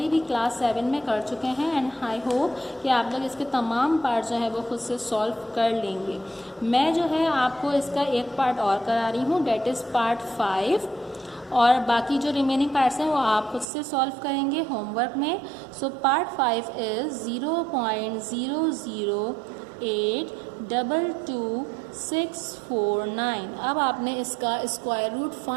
भी क्लास 7 में कर चुके हैं एंड आई होप होप कि आप लोग इसके तमाम पार्ट जो है वो खुद से सॉल्व कर लेंगे। मैं जो है आपको इसका एक पार्ट और करा रही हूँ, डेट इज़ पार्ट 5, और बाकी जो रिमेनिंग पार्ट्स हैं वो आप खुद से सॉल्व करेंगे होमवर्क में। So part 5 is 0.008222649। अब आपने इसका स्क्वायर रूट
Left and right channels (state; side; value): drops out; left; at 13.7 s